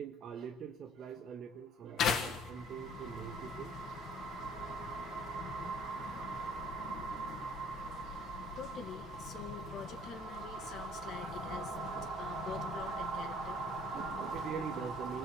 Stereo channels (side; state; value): both; normal; correlation 0.55